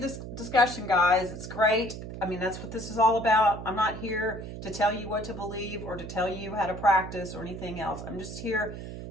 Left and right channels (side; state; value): right; noise; hum, 9 dB below the sound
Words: discussion, guys. It's great. That's what this is all about. I'm not here to tell you what to believe or to tell you how to practice or anything else. I'm just here